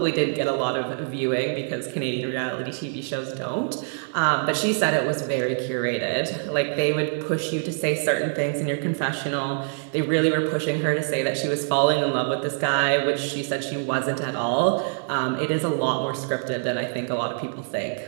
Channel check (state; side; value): silent; left; digital silence